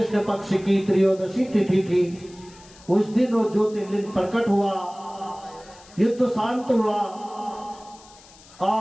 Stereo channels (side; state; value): left; noise; hiss, 23 dB below the sound